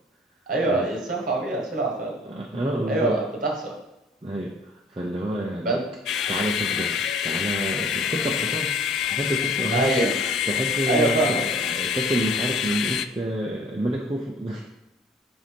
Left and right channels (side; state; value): both; normal; correlation 0.51